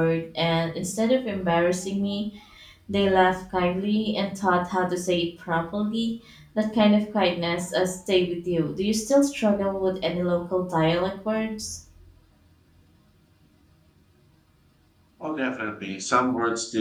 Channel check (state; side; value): identical; both; correlation 1.00